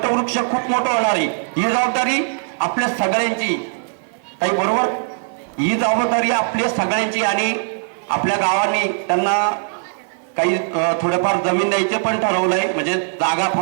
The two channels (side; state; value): left; silent; 55 dB below the other